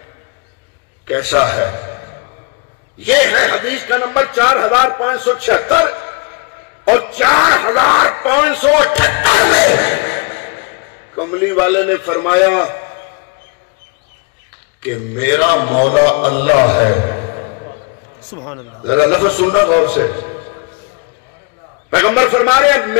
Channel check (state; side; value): quieter; right; 31.1 dB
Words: کیسا ہے، یہ ہے حدیث کا نمبر 4,576، اور 4,578 میں کملی والے نے فرمایا کہ میرا مولا اللہ ہے۔ سبحان اللہ۔ ذرا لفظ سننا غور سے، پیغمبر فرما رہے ہیں